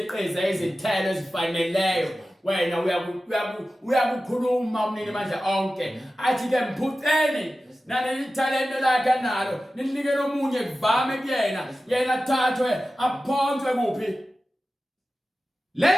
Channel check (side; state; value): both; normal; correlation 0.94